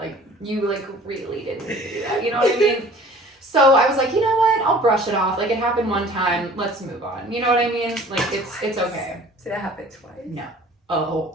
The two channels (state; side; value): normal; both; correlation 0.48